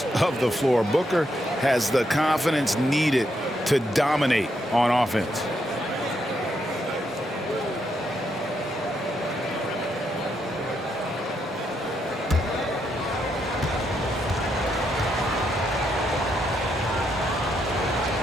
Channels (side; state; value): both; normal; correlation 0.78